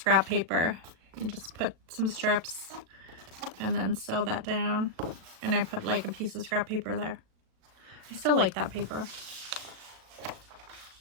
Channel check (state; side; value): late; left; 37 ms